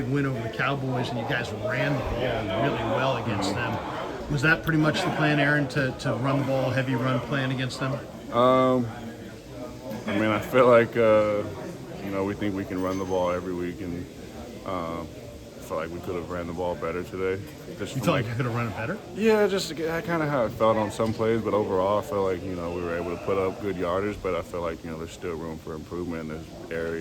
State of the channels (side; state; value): both; identical; correlation 1.00